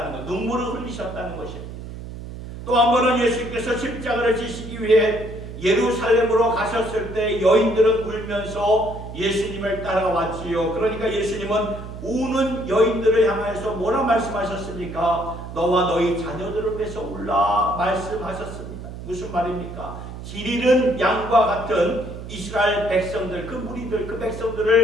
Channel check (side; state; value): right; noise; hum, 11 dB below the sound